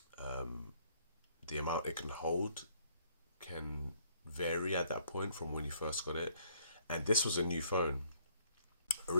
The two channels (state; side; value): inverted; both; correlation -0.65